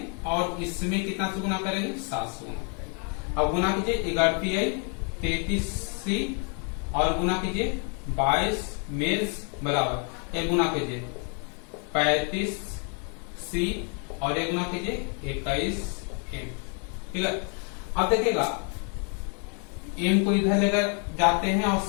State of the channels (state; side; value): quieter; right; 39.0 dB